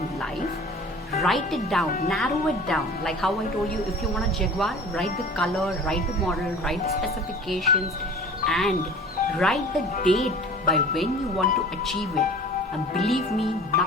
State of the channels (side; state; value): both; normal; correlation 0.42